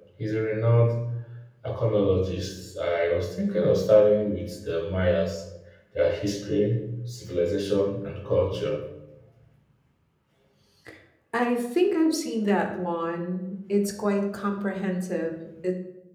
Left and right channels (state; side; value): identical; both; correlation 1.00